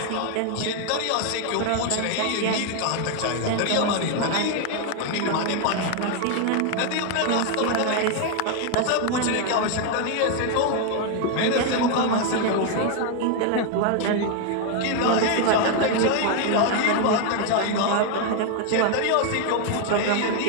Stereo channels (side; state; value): both; different; correlation 0.01